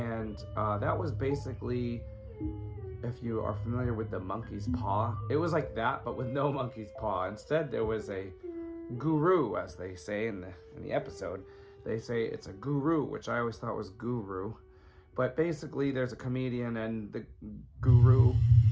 that was basically, if you are familiar with the monkey's paw, it was like that, but with no monkey's paw. Instead, there was a guru, as they say in the episode. They say it's a guru, which I always thought was guru. But basically, there's a comedian, and the guru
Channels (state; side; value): identical; both; correlation 1.00